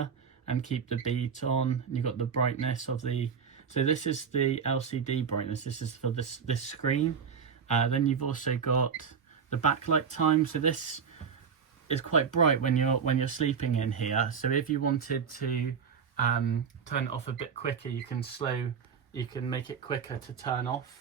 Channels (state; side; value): quieter; left; 6.6 dB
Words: and keep the beat on. And you've got the brightness of the, so this is the LCD brightness, this is for this screen. Then you've also got the backlight time, so this is quite bright when you're sleeping in here. So if you wanted to turn it off a bit quicker, you can make it quicker to turn